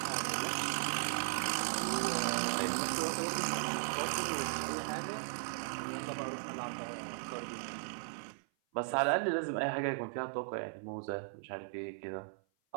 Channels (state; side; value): silent; left; 53 dB below the other